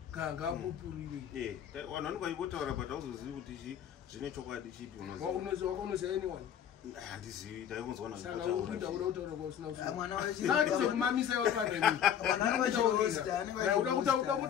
kangapupurire vanhu vanobaipotaura but hauzozivi kuti zvine chokwadi chipi unoziva anyone handizivi taikunzwana ndizokumamisa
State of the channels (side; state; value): right; quieter; 9.2 dB